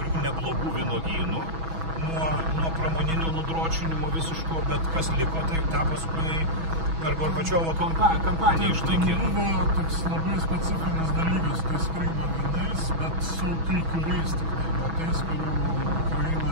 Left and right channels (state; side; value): late; left; 6.1 ms